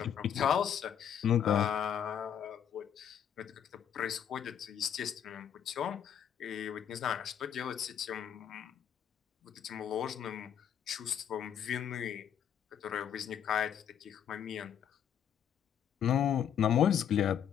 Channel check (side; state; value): right; quieter; 8.9 dB